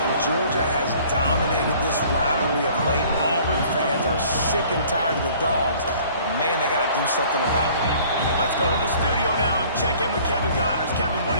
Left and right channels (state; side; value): inverted; both; correlation -0.53